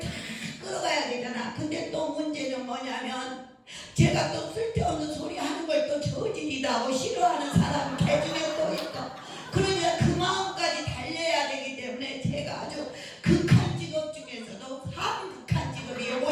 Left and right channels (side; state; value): both; identical; correlation 1.00